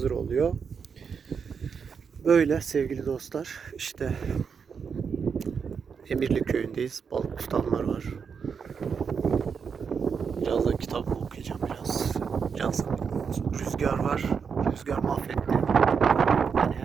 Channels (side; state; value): left; quieter; 6.2 dB